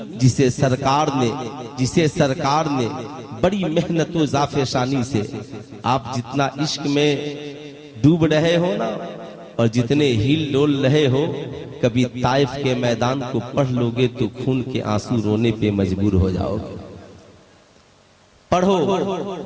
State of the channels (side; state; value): both; identical; correlation 1.00